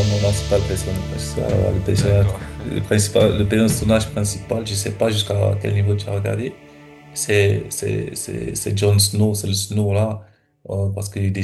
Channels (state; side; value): identical; both; correlation 1.00